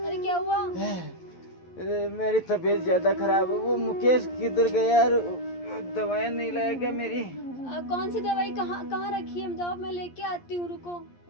अरे क्या हुआ? मेरी तबीयत ज्यादा खराब है। वो मुकेश किधर गया यार? दवाएं नहीं लाया क्या मेरी? कौन सी दवाई कहाँ कहाँ रखी है? जाओ मैं लेके आती हूँ, रुको।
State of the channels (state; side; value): late; right; 11 ms